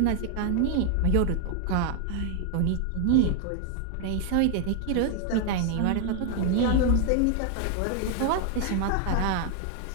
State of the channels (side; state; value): both; different; correlation 0.00